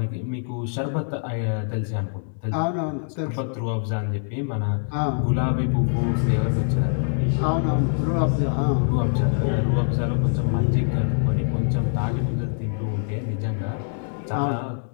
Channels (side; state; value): right; silent; 62 dB below the other